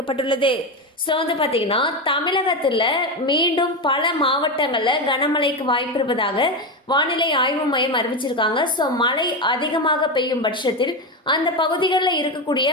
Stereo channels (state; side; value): normal; both; correlation 0.15